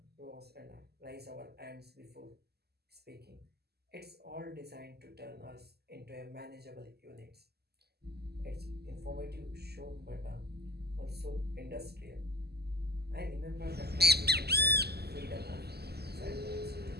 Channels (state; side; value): late; left; 0.46 ms